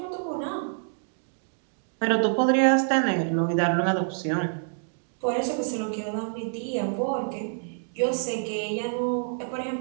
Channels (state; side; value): silent; left; digital silence